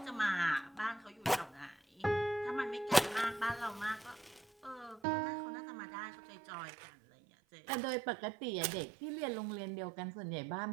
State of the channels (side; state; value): left; drops out; at 5.0 s